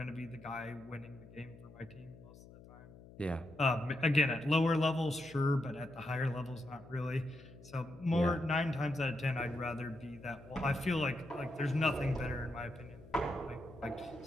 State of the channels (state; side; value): noise; left; hum, 19 dB below the sound